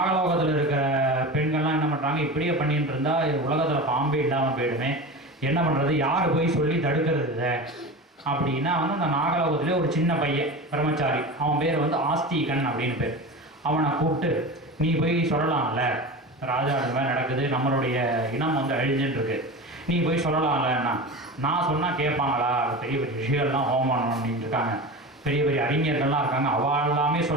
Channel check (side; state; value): both; normal; correlation 0.29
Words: இருக்கிற பெண்கள்லாம் என்ன பண்ணுறாங்க, இப்படியே பண்ணிட்டு இருந்தால் உலகத்தில் பாம்பே இல்லாமல் போயிடுமே, என்ன பண்ணுறது, யார் போய் சொல்லி தடுக்கிறது அப்படின்னா வந்து அந்த நாகலோகத்திலே ஒரு சின்ன பையன் பிரம்மச்சாரி, அவன் பேர் வந்து ஆஸ்திகன் அப்படின்னு பேர். அவனை கூப்பிட்டு நீ போய் சொல்லலாம்ல, ராஜா அது மாதிரி நடக்குது, நம்மளுடைய இனம் வந்து அழிஞ்சுட்டுருக்கு, நீ போய் சொல்லலாம்லன்னா. நான் சொன்னால் கேட்பாங்களா, பெரிய பெரிய ரிஷிகள்லாம் ஹோமம் பண்ணிட்டு இருக்காங்க, பெரிய பெரிய அறிஞர்கள்லாம் இருக்காங்க, அவள் எல்லாமே